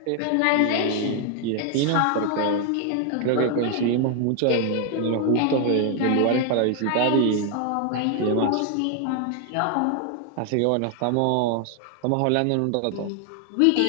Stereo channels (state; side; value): different; both; correlation 0.00